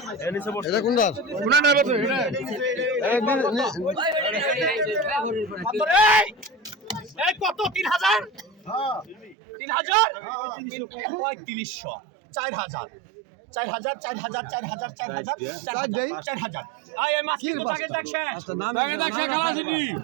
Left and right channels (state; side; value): drops out; left; at 9.3 s